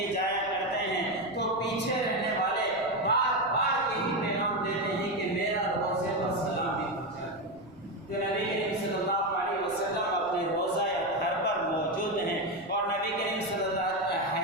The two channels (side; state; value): left; noise; rumble, 25 dB below the sound